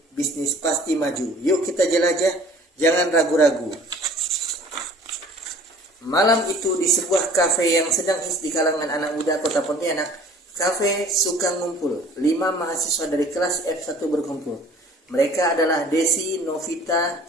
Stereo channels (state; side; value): normal; both; correlation 0.50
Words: bisnis pasti maju. Yuk kita jelajah, jangan ragu-ragu. Malam itu di sebuah kafe yang sedang hits di kalangan anak muda kota Pontianak, kafe suka ngumpul. 5 mahasiswa dari kelas F1 berkumpul. Mereka adalah Desi, Novita,